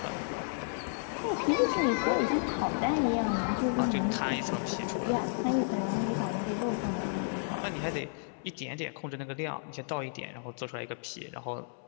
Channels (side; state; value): right; silent; 56 dB below the other